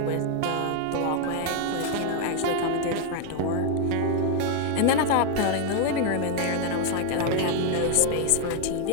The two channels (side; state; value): both; different; correlation 0.00